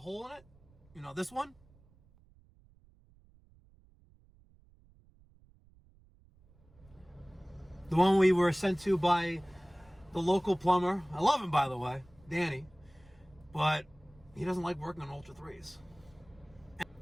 in it? You know, this one? The one we were sent to by the local plumber. I love him, by the way, Danny. But he doesn't like working on Ultra 3s. I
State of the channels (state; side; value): noise; right; rumble, 28 dB below the sound